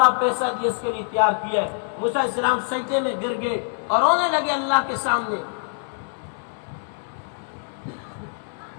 پیسہ دیا اس کے لیے تیار کیا ہے۔ موسیٰ علیہ السلام سجدے میں گر گئے اور رونے لگے اللہ کے سامنے۔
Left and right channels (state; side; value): silent; right; 62 dB below the other